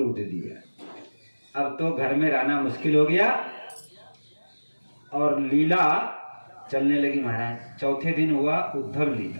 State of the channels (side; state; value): both; inverted; correlation -1.00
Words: दिया। अब तो घर में रहना मुश्किल हो गया और लीला चलने लगी महाराज। चौथे दिन हुआ उद्धव